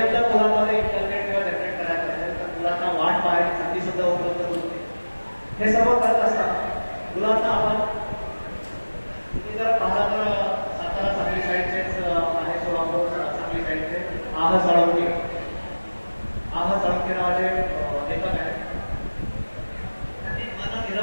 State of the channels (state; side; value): inverted; both; correlation -1.00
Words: जर मुलांमध्ये इंटरनेट किंवा जनरेट करायचं असेल तर मुलांना वाट पाहायची संधी सुद्धा उपलब्ध करून देते. हे सर्व करत असताना मुलांना आपण तुम्ही जर पाहता तर सातारा सांगली साईडचेच आहे, सोलापूर सांगली साईडचे आह साळुंके नावाचे लेखक आहेत. त्यांनी मन